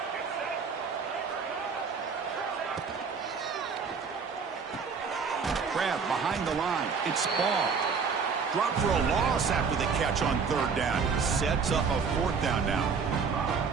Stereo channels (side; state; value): left; quieter; 5.5 dB